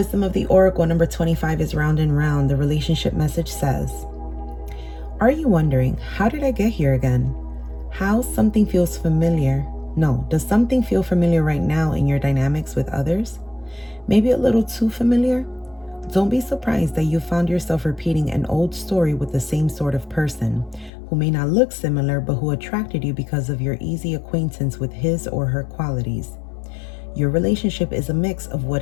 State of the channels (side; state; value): right; drops out; at 20.9 s